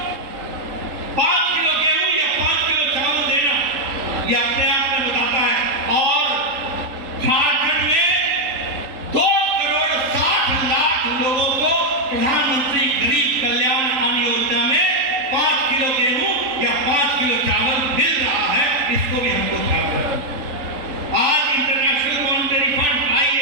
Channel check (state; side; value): late; left; 3.8 ms